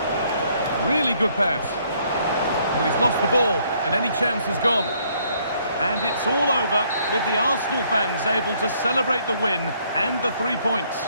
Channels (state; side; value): inverted; both; correlation -0.66